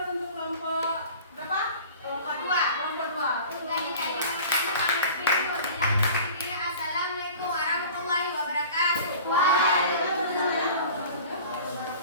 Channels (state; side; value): inverted; both; correlation -0.42